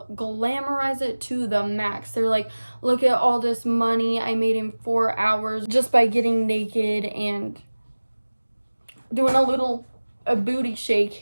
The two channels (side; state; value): both; inverted; correlation -1.00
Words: glamorize it to the max. They're like, look at all this money I made in 4 hours just by getting naked and doing a booty shake